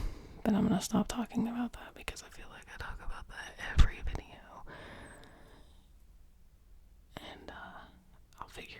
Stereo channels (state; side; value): identical; both; correlation 1.00